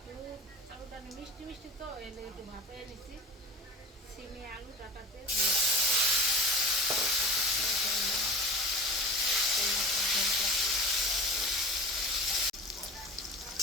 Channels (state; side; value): normal; both; correlation 0.39